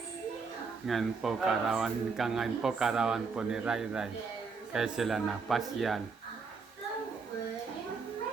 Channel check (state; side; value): quieter; left; 4.8 dB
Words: Ngayon po karawan po ni Ray Ray. Kaya sila napasyal.